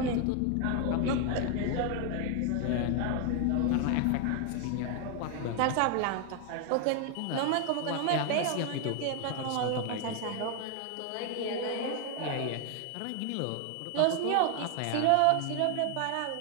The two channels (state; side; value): different; both; correlation 0.01